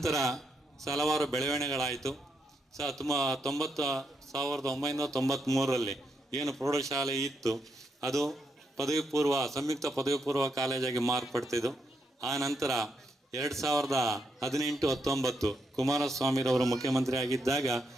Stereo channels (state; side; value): normal; both; correlation 0.80